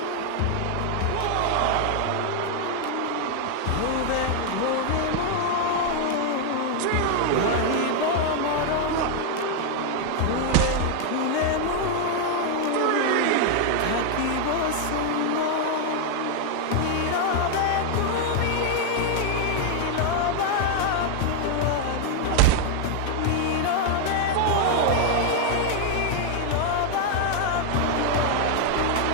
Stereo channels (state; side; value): different; both; correlation 0.00